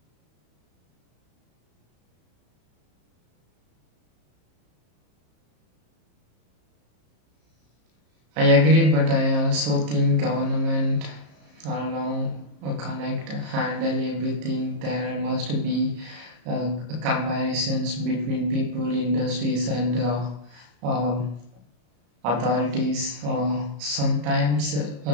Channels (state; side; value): late; left; 34 ms